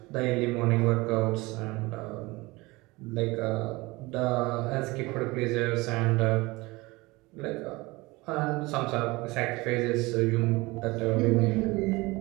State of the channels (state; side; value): quieter; left; 22.5 dB